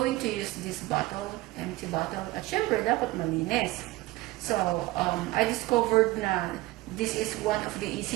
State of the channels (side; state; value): left; quieter; 19.1 dB